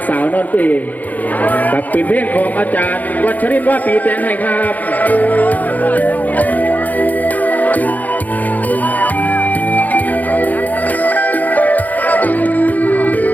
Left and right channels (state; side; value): late; right; 0.080 ms